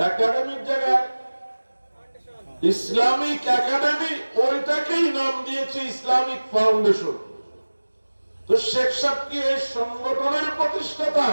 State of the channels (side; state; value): both; inverted; correlation -1.00